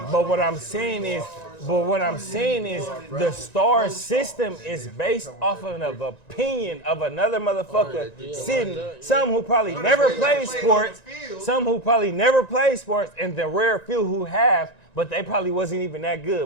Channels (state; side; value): late; right; 1.9 ms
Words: 4 But what I'm stars, saying 3 is, stars, the star system is based off of an opinion of another motherfucker sitting. Some who probably never played sports, some who probably never played sports, and the rare few who have. But they probably wasn't even that